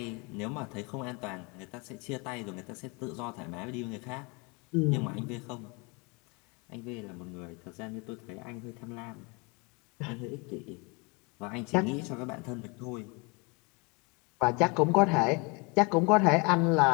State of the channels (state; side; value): quieter; right; 30.1 dB